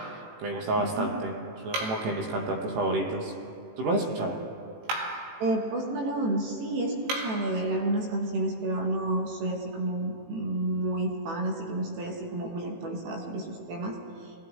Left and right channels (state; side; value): late; left; 18 ms